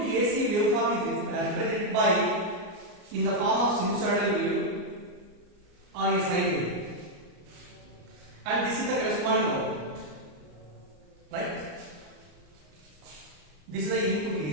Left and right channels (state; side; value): late; left; 34 ms